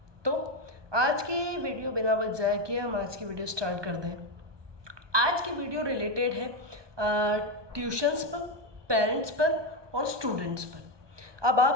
तो आज की वीडियो बिना वक्त जाए किए हम आज की वीडियो स्टार्ट कर दें। आज की वीडियो रिलेटेड है ट्यूशन्स पर, पेरेंट्स पर और स्टूडेंट्स पर। अब आप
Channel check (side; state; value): left; late; 1.2 ms